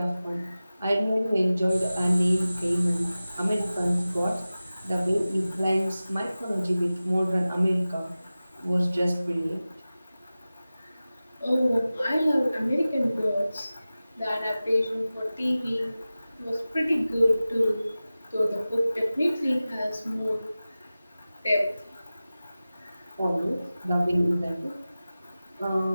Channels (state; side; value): inverted; both; correlation -0.96